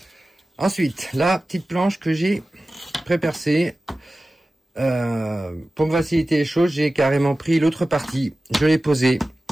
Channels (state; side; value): normal; both; correlation 0.95